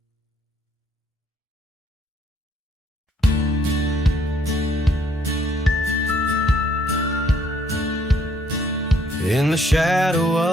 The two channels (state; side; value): normal; both; correlation 0.66